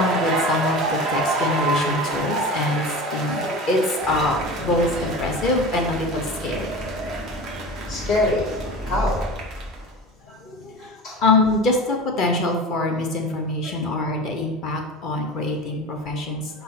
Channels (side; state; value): both; normal; correlation 0.32